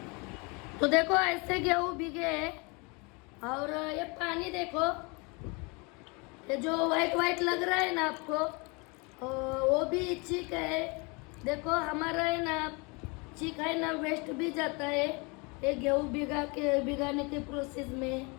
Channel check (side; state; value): right; quieter; 29.6 dB